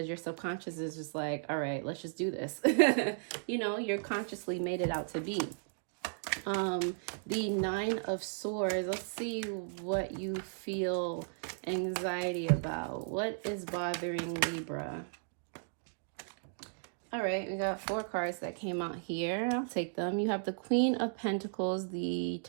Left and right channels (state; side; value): silent; left; digital silence